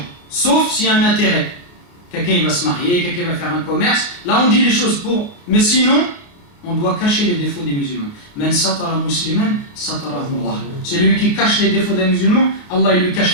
sauf s'il y a un intérêt. Quelqu'un il va se marier, quelqu'un va faire un commerce. Là, on dit les choses pour. Mais sinon, on doit cacher les défauts des musulmans. Man satara musliman, satarahu Allah. Celui qui cache les défauts des musulmans, Allah il lui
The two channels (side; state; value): right; late; 28 ms